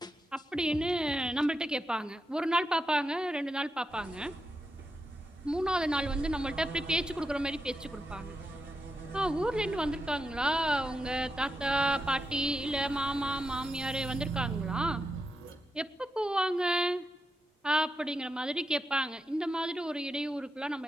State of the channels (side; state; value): both; normal; correlation 0.86